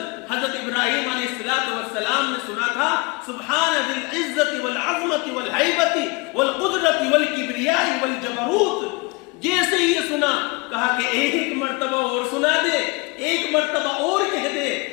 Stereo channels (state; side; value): quieter; right; 27.8 dB